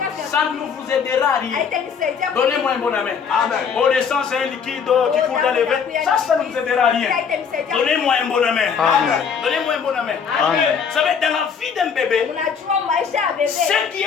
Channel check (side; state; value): right; quieter; 6.6 dB